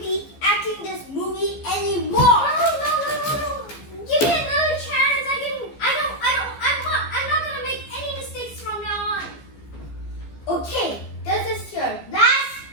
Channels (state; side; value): late; right; 15 ms